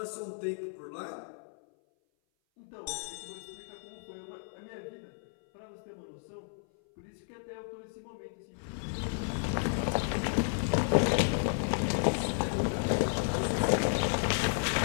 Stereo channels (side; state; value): right; silent; 56 dB below the other